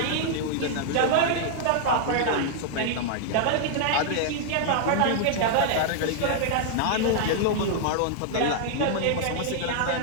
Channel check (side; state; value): both; different; correlation -0.01